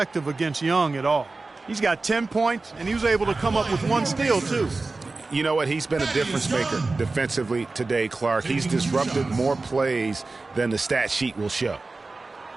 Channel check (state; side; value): quieter; left; 3.6 dB